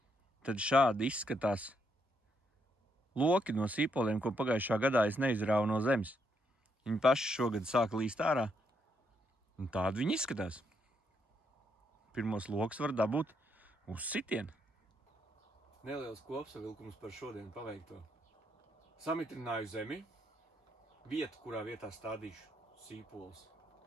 tad šādi izskatās loki no sīpoliem, ko pagājušā gadā es neizrāvu no zemes. Viņi paši šogad sāka līst ārā, un tādi viņi izskatās. Pirmos lokus var dabūt uz sitienu. Neliels kopsavilkums par šodien paveikto. Samitrināju zemi, vietu, kurā vietā stādīšu sīpolus.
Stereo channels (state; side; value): normal; both; correlation 0.76